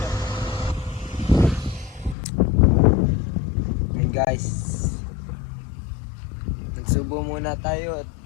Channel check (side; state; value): right; drops out; at 2.1 s